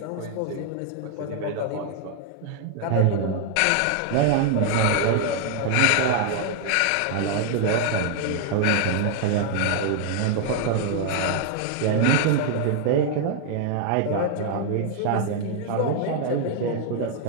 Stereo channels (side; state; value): both; different; correlation 0.00